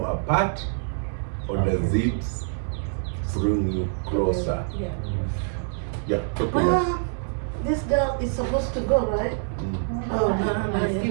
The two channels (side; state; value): left; silent; 61 dB below the other